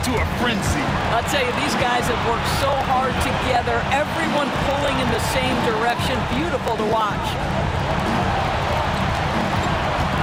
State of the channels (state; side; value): identical; both; correlation 1.00